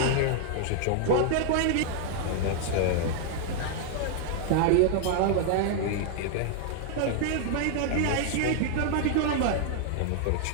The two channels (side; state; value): both; different; correlation 0.00